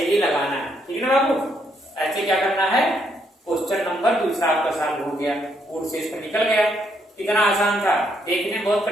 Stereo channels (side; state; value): both; normal; correlation 0.74